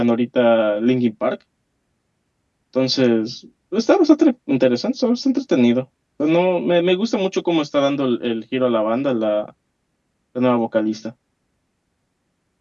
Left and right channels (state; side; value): identical; both; correlation 1.00